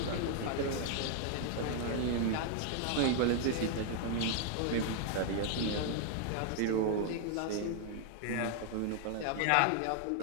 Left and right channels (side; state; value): both; different; correlation 0.00